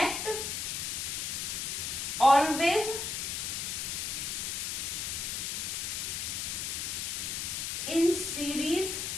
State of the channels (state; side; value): noise; left; hiss, 2 dB below the sound